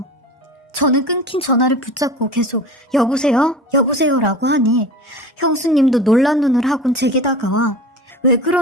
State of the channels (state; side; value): normal; both; correlation 0.35